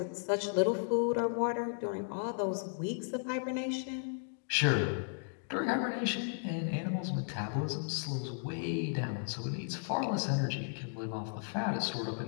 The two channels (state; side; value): silent; right; digital silence